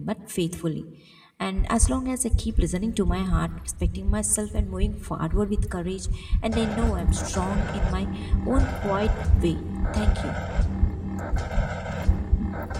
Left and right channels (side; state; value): both; identical; correlation 1.00